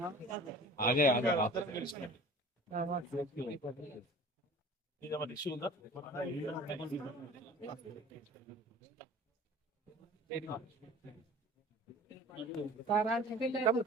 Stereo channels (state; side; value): normal; both; correlation 0.44